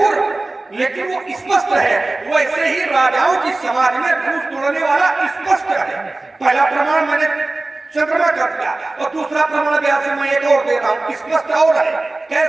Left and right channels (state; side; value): quieter; left; 3.0 dB